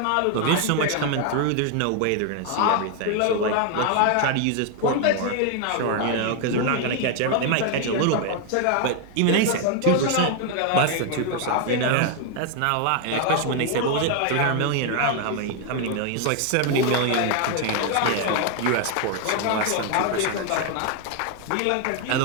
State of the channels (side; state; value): both; different; correlation 0.01